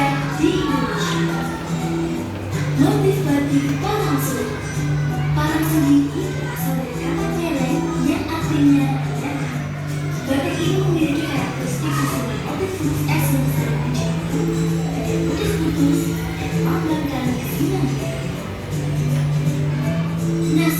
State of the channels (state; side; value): identical; both; correlation 1.00